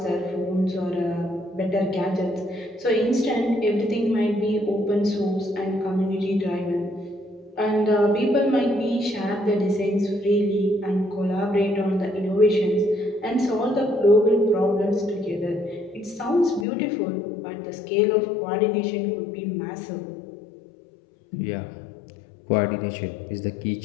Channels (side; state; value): right; drops out; at 16.7 s